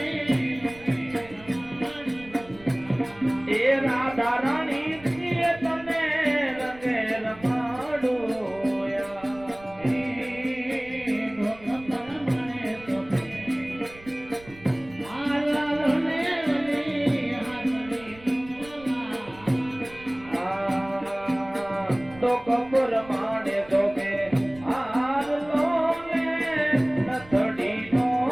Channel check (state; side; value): noise; right; rumble, 22 dB below the sound